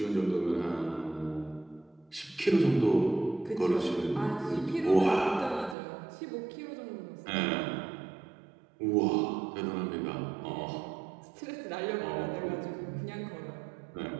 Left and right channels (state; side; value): drops out; left; at 5.8 s